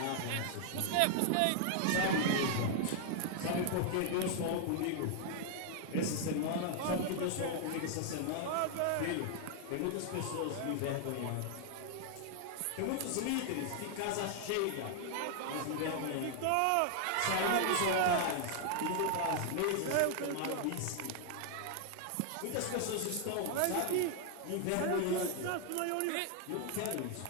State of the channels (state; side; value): different; both; correlation 0.00